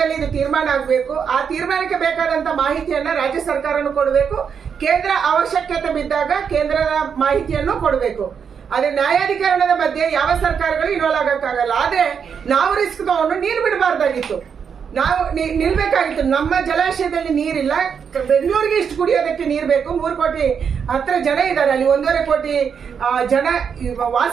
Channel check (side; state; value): left; quieter; 6.9 dB